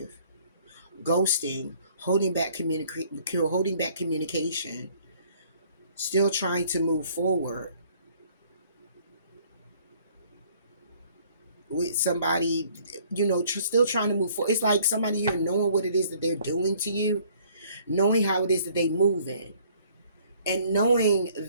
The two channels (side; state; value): both; inverted; correlation -0.59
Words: ghosting, holding back communication, still trying to move forward with somebody, still trying to move forward. It's like somebody here knowing what it is that they're doing to you, knowing how it is that they moving, and knowing